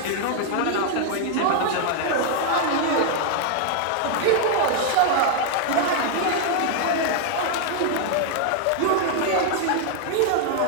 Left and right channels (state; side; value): different; both; correlation 0.00